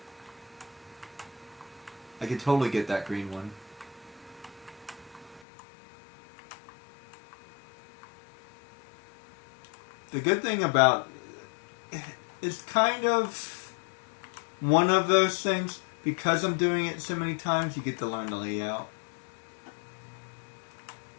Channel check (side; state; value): right; drops out; at 5.5 s